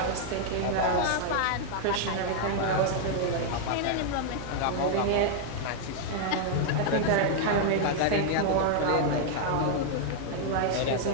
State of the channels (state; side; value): different; both; correlation -0.01